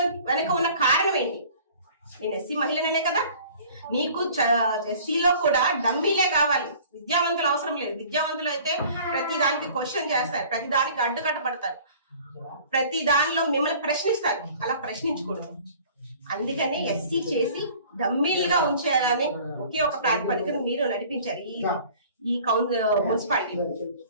వెనక ఉన్న కారణం ఏంటి? నేను ఎస్సీ మహిళనే కదా. నీకు ఎస్సీలో కూడా డమ్మీలే కావాలి, విద్యావంతులు అవసరం లేదు. విద్యావంతులు అయితే ప్రతి దానికి క్వశ్చన్ చేస్తారు, ప్రతి దానికి అడ్డుకట్టబడతారు, ప్రతి దానిలో మిమ్మల్ని ప్రశ్నిస్తారు. అలా ప్రశ్నించకూడదు. అందుకని ఎస్సీ చేసి డమ్మీలుగా ఉంచేయాలని ఒకే ఒక ప్రాతిపదికను మీరు నడిపించారు ఈ మున్సిపాలిటీ.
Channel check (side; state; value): both; inverted; correlation -0.49